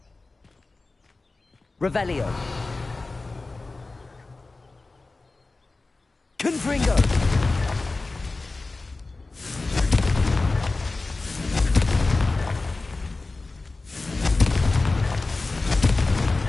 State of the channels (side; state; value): right; quieter; 3.4 dB